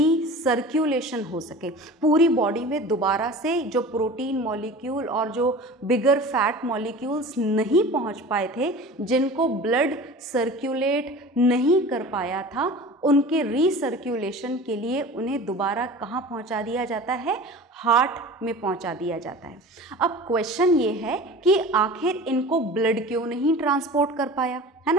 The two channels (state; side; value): normal; both; correlation 0.38